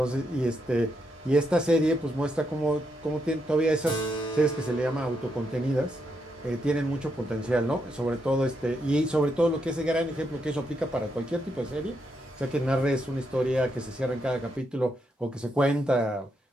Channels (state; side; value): normal; both; correlation 0.80